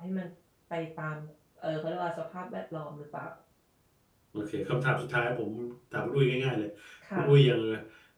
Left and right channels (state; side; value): identical; both; correlation 1.00